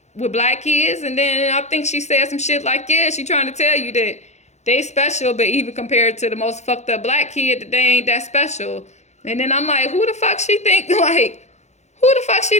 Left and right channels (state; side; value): late; right; 0.33 ms